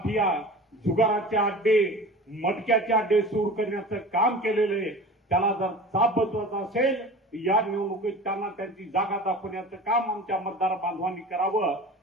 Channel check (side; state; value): both; normal; correlation 0.37